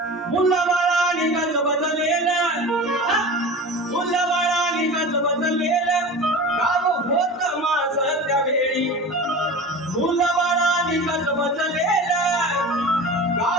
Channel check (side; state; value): both; normal; correlation 0.34